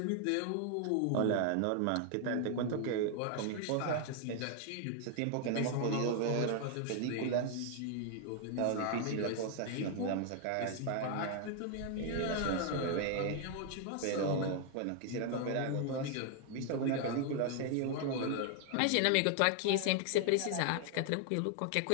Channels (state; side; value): different; both; correlation 0.00